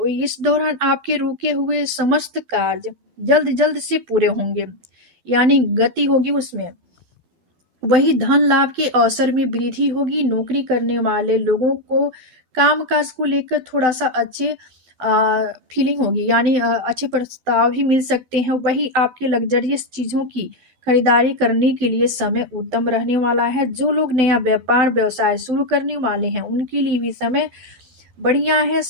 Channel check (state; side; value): late; left; 12 ms